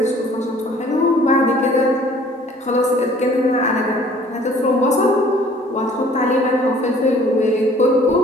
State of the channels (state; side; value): normal; both; correlation 0.54